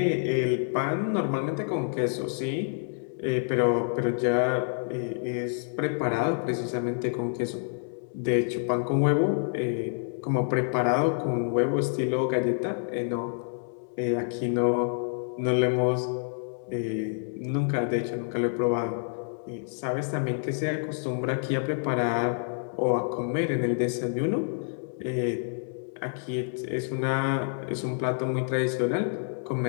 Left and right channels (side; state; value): right; silent; digital silence